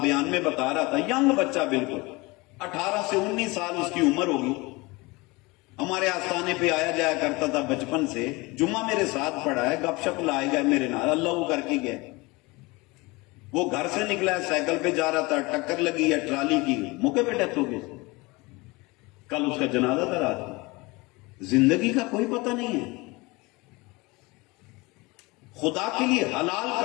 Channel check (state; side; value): quieter; right; 24.1 dB